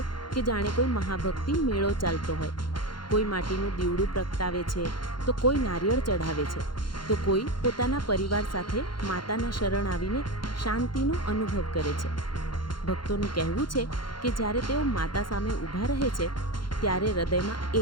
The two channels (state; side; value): late; right; 0.72 ms